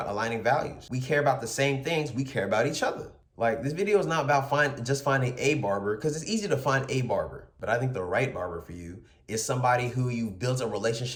aligning values. We care about the same things, we care about each other. Like, this video is not about just finding a barber, because it's easy to find a barber. But I think the right barber for you is somebody who you've built a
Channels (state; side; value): identical; both; correlation 1.00